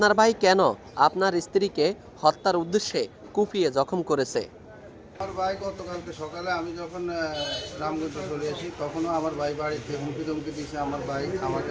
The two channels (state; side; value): identical; both; correlation 1.00